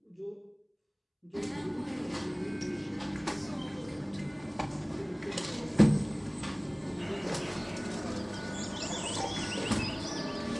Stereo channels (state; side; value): identical; both; correlation 1.00